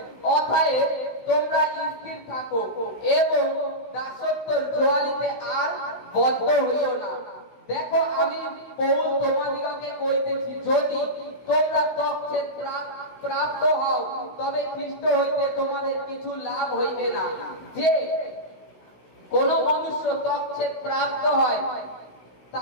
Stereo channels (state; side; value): late; right; 16 ms